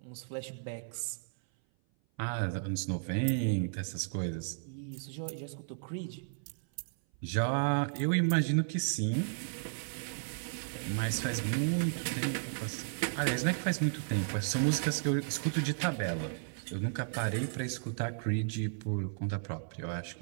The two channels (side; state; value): left; silent; 55 dB below the other